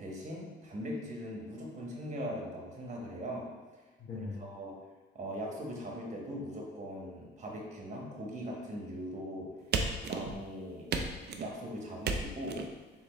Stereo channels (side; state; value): both; normal; correlation 0.42